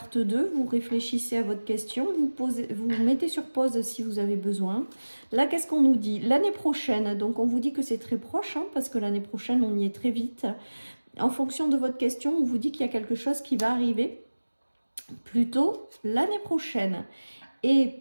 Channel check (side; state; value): both; inverted; correlation -1.00